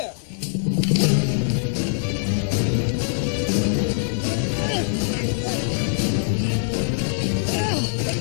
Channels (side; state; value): right; silent; digital silence